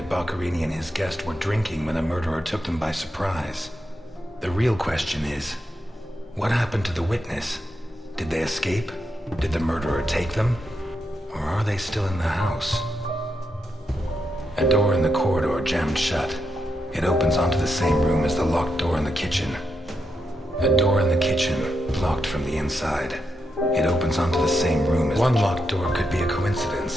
Boccarini and his guest were drinking when the murderer took them by surprise. The real question is, what happened to the witness? Did they escape? Did the murderer take them? Or are they still in the house? A door in the corridor jammed shut. It opens onto the same room as the locked door in the kitchen. A door in the kitchen, locked from the inside. It opens onto the same room as one locked door could be a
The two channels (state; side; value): normal; both; correlation 0.84